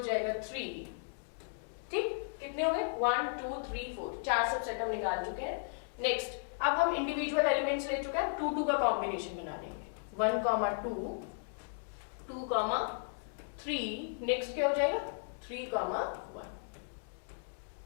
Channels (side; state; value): right; silent; digital silence